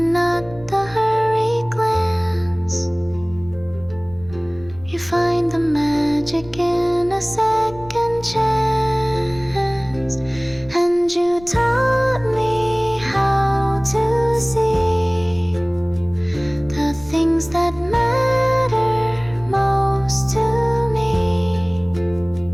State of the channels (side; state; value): left; noise; rumble, 20 dB below the sound